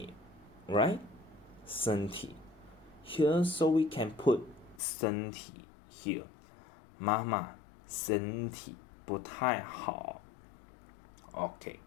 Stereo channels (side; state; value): right; drops out; at 4.8 s